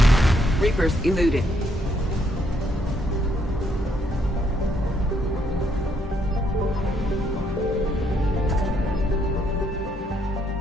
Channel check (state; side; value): normal; both; correlation 0.73